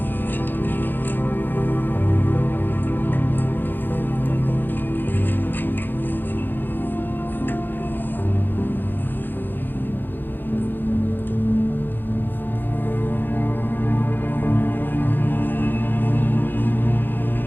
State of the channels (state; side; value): late; right; 0.093 ms